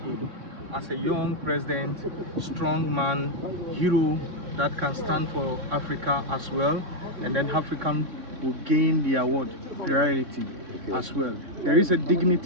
as a young president, strong man, hero that can stand for Africa as well, and then African will gain the award priority as well. There is a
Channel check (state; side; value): late; left; 3.6 ms